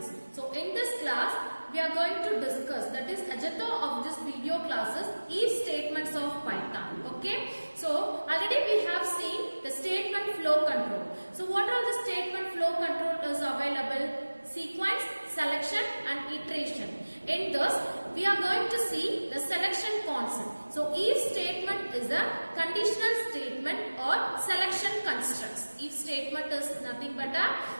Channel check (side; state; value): both; inverted; correlation -1.00